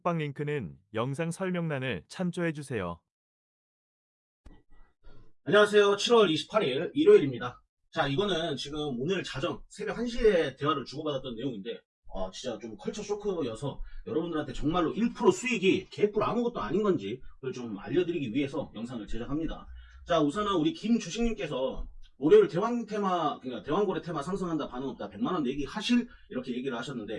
링크는 영상 설명란을 참조해주세요. 안녕하세요. 7월 28일 일요일입니다. 자, 이거는 지금 오늘 자정 새벽 1시에 대화를 주고받았던 내용인데 진짜 좀 컬처 쇼크여서 여러분들한테 정말로 1% 수익이 개뿔 아무것도 아닌 건지 그걸 좀 알려드리기 위해서 영상을 제작합니다. 자, 우선은 우리 김주식님께서 월요일 대왕 테마, 그러니까 대왕고래 테마 상승한다 반응 없다 100만원 내기 하실 이렇게 얘기를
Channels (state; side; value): identical; both; correlation 1.00